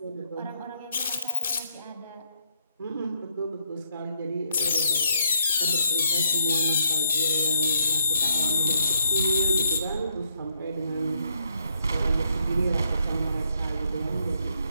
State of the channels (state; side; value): inverted; both; correlation -0.73